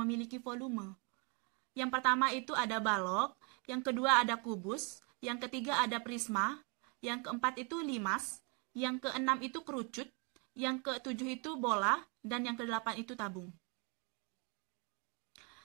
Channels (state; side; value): quieter; left; 34.2 dB